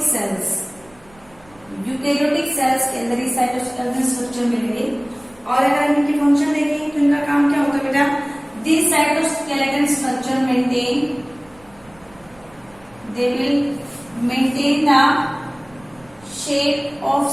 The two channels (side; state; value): right; noise; rumble, 27 dB below the sound